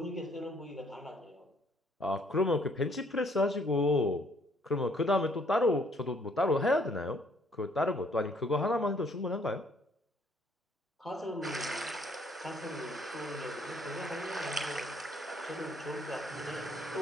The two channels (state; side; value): normal; both; correlation 0.64